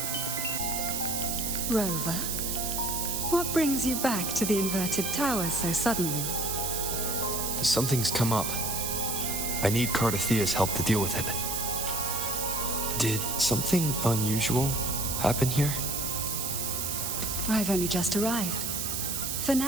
Rover, what brings you back to the inverted tower so suddenly? Something's come up. I need Cardathea's help to deal with it. Did something unusual happen here? I've only just arrived. For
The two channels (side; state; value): right; noise; hiss, 1 dB below the sound